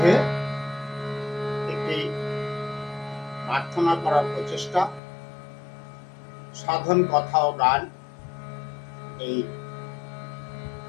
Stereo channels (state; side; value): drops out; right; at 5.0 s